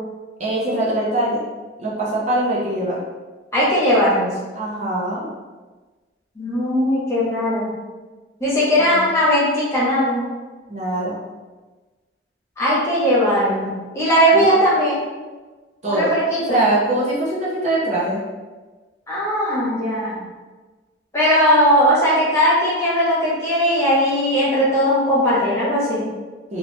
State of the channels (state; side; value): normal; both; correlation 0.08